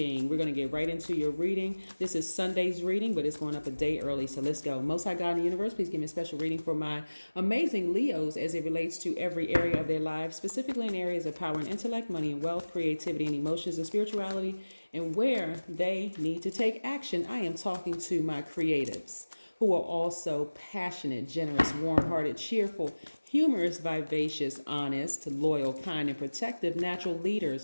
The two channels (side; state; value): both; inverted; correlation -1.00